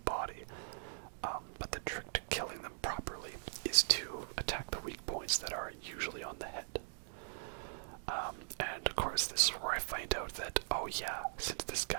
body. But the trick to killing them properly is to attack the weak points that are usually on the head. And of course, this is where I find out that, oh yeah, since this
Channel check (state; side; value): silent; left; digital silence